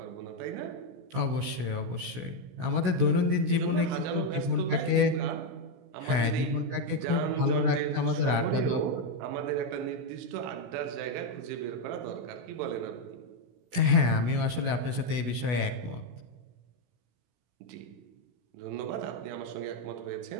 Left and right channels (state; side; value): late; left; 16 ms